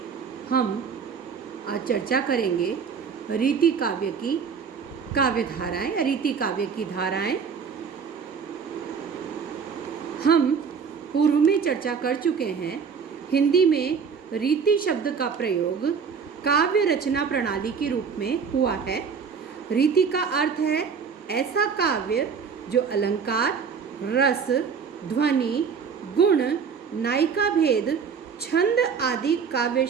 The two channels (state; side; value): quieter; left; 6.2 dB